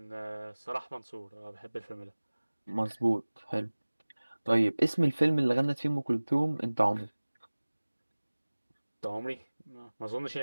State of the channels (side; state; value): both; inverted; correlation -1.00